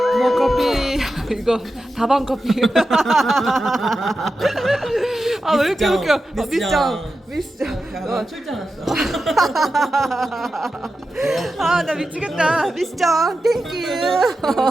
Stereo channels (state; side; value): normal; both; correlation 0.91